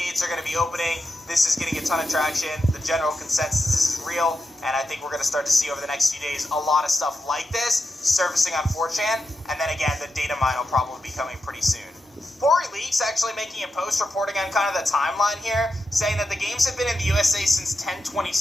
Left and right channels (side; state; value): both; normal; correlation 0.88